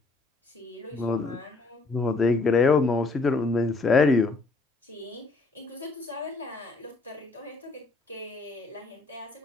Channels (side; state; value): right; quieter; 3.7 dB